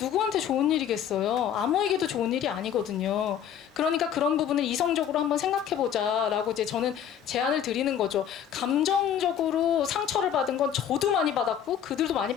좋은 일이겠어요? 아무에게도 좋은 일이 아니거든요. 그러니까 그런 부분을 이성적으로 한번 생각해보자라고 이제 저는 제안을 드리는 거죠. 감정적으로 상처를 받은 건 저도 많이 받았고 그들도 많이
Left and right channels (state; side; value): quieter; right; 9.1 dB